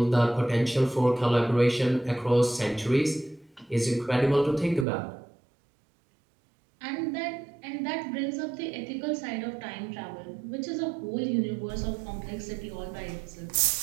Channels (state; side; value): drops out; left; at 4.9 s